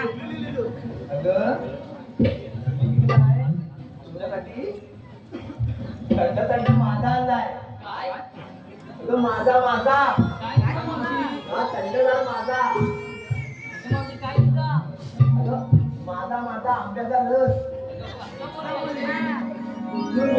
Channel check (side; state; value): both; identical; correlation 1.00